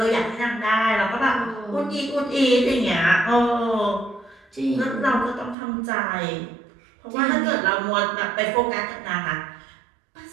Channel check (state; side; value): drops out; left; at 5.6 s